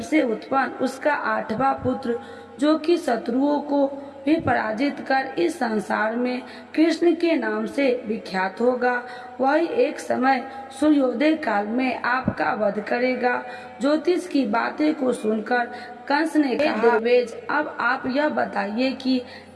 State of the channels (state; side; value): identical; both; correlation 1.00